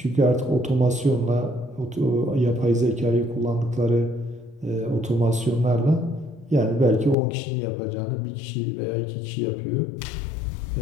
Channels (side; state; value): right; drops out; at 7.2 s